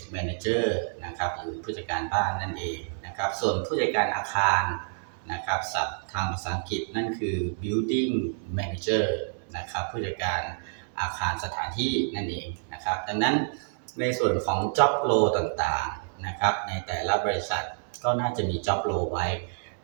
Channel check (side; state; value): left; silent; digital silence